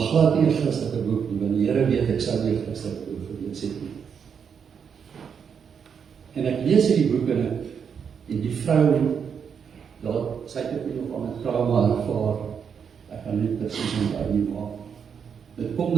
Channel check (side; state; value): left; quieter; 7.0 dB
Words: nie 'n Christelike boek nie, want die Here weet ek sou nie 'n Christelike boek gelees het nie. En ek lees hierdie boek en die vrou, sy het ook nog aan 'n trauma ervaar, ek kan nie presies onthou nie, maar dit kom